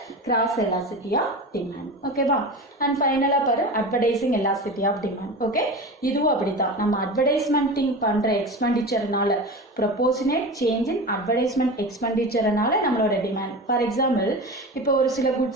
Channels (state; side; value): normal; both; correlation 0.29